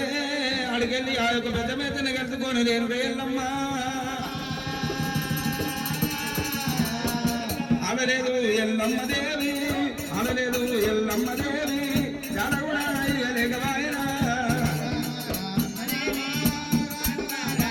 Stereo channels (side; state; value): both; identical; correlation 1.00